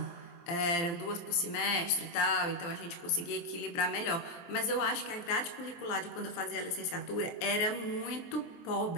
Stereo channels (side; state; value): right; late; 23 ms